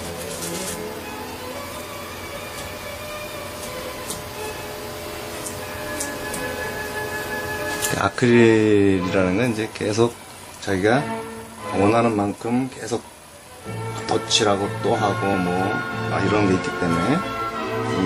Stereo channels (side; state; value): both; identical; correlation 1.00